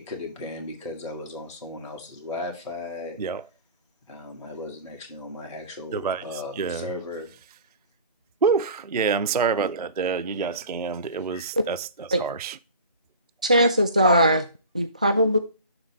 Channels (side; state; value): both; inverted; correlation -0.40